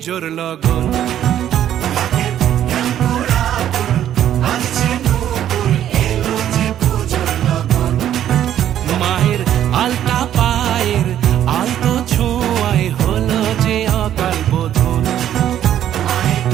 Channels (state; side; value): quieter; left; 11.0 dB